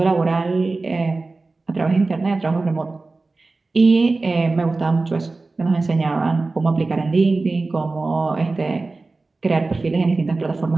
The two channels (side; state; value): left; quieter; 3.5 dB